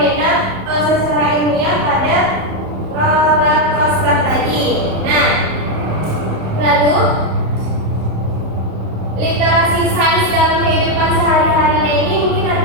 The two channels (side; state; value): left; late; 27 ms